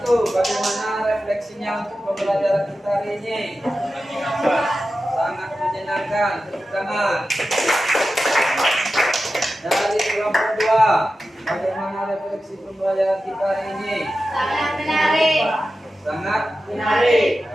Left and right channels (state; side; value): normal; both; correlation 0.93